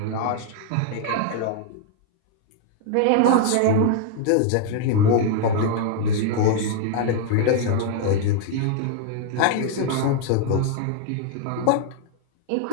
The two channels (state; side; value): different; both; correlation 0.00